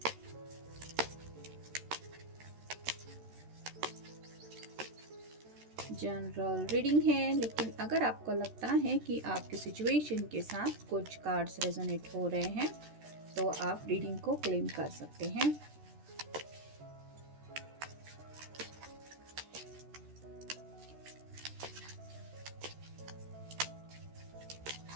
जनरल रीडिंग है, लेकिन अगर आपको लगता है कि आपकी सिचुएशन के साथ कुछ कार्ड्स रेजोनेट हो रहे हैं तो आप रीडिंग को क्लेम कर सकते हैं।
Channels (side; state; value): left; late; 13 ms